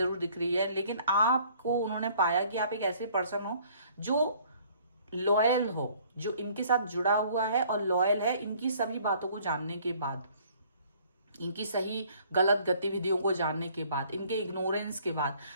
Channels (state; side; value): inverted; both; correlation -0.58